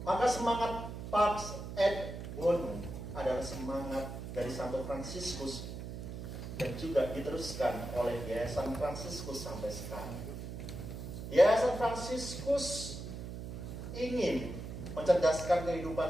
Maka semangat Pax et Bonum adalah semangat dari Santo Fransiskus yang juga diteruskan oleh Yayasan Fransiskus sampai sekarang. Yayasan Fransiskus ingin mencerdaskan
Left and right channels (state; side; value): noise; right; hum, 8 dB below the sound